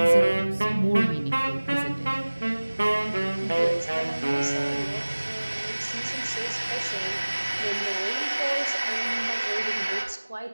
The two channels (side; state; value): both; inverted; correlation -1.00